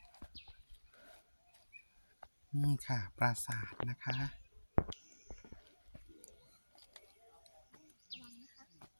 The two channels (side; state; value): both; inverted; correlation -1.00